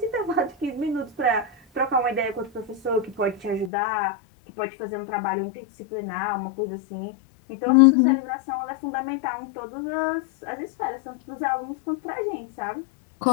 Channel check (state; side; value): drops out; right; at 3.7 s